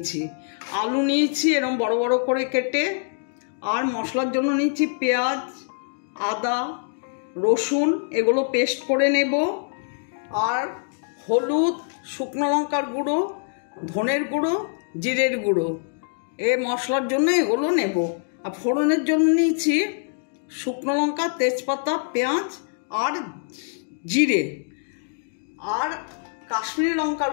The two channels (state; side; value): silent; right; digital silence